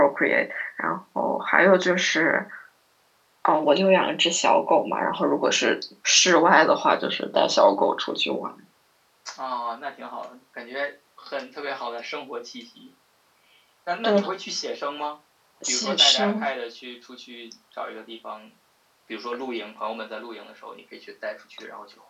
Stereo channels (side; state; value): both; identical; correlation 1.00